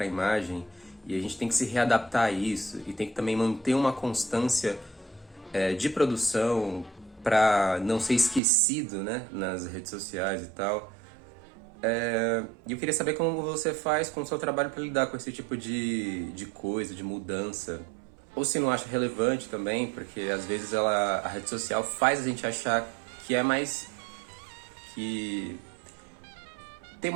a imagem, e a gente tem que se readaptar a isso e tem que também manter uma constância de produção para não ser esquecido, né, nas redes sociais e tal. E eu queria saber como você faz com o seu trabalho para lidar com esse tipo de coisa, de mudança. Ou se não acha relevante também, porque às vezes a rede social faz a gente achar que é mais... que tem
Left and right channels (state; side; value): drops out; left; at 8.4 s